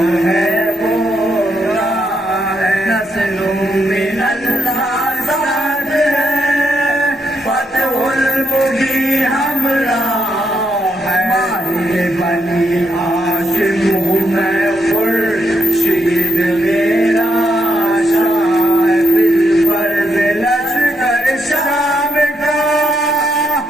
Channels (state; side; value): normal; both; correlation 0.78